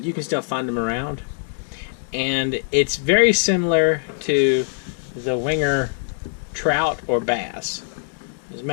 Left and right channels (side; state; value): right; silent; digital silence